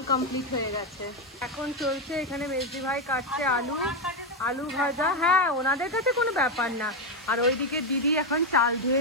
কমপ্লিট হয়ে গেছে। এখন চলছে এখানে মেজদি ভাই কাটছে আলু ভাজা। হ্যাঁ, ওনাদের কাছে কোনো ব্যাপার না। আর ওইদিকে দিদি এখন চাল ধুয়ে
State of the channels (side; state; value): both; normal; correlation 0.07